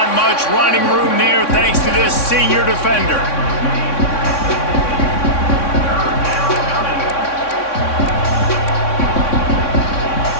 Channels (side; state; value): right; late; 3.6 ms